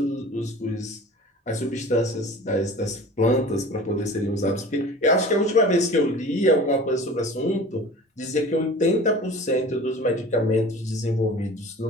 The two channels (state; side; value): normal; both; correlation 0.40